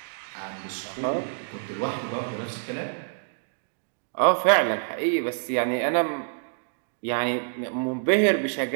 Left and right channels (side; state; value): left; silent; digital silence